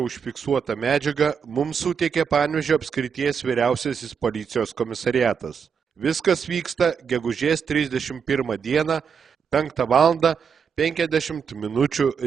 užfiksuotą medžiagą mums suteikė Panevėžio apskrities vyriausiasis policijos komisariatas. Viskas vyksta gegužės 31 dieną 5:50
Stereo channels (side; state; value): left; quieter; 6.6 dB